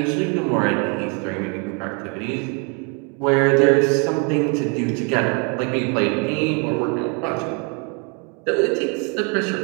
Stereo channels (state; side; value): quieter; left; 34.6 dB